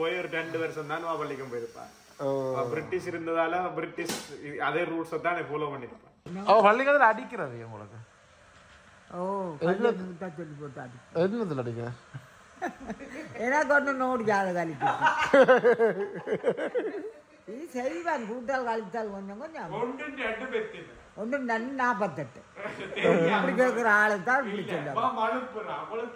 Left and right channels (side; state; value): both; identical; correlation 1.00